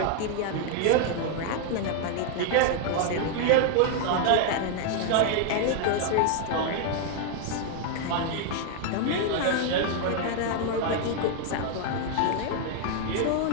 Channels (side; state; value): both; different; correlation 0.00